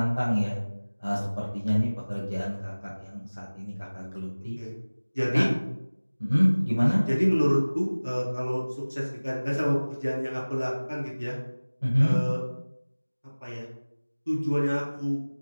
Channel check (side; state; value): both; inverted; correlation -1.00